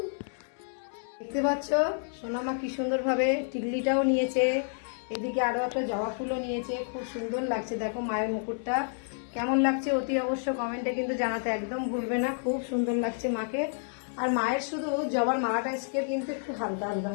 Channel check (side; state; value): right; silent; 58 dB below the other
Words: দেখতে পাচ্ছ সোনামা কি সুন্দরভাবে টিকলিটাও নিয়েছে, এদিকে আরো একটা জবা ফুলও নিয়েছে, খুব সুন্দর লাগছে। দেখো মায়ের মুকুটটা কেমন লাগছে অতি অবশ্য কমেন্টে কিন্তু জানাতে একদম ভুলবে না, খুব সুন্দর লাগছে মাকে। আর মায়ের শুধু জবার মালাটা আজকে কিন্তু একটু হালকা হালকা